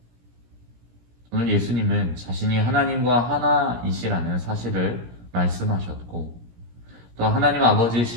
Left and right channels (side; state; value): left; late; 17 ms